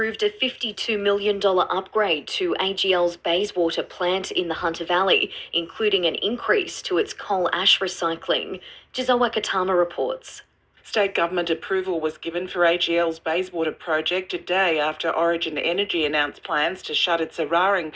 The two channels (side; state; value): both; identical; correlation 1.00